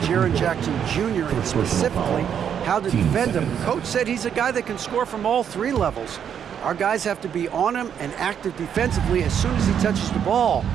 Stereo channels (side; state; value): left; quieter; 8.4 dB